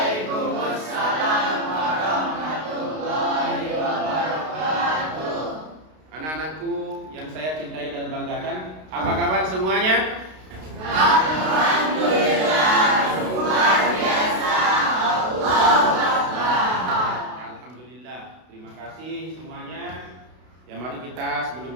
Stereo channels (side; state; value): left; late; 32 ms